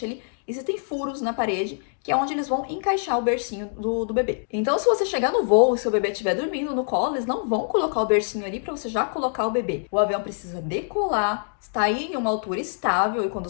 ali, existem furos na parede, que é onde eles vão encaixar o bercinho do bebê. Então, se você chegar no voo e seu bebê estiver dormindo no colo, eles não vão colocar o bercinho ali pra você já colocar o bebê. O avião precisa decolar, está aí em uma altura estável, e quando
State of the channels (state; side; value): silent; right; digital silence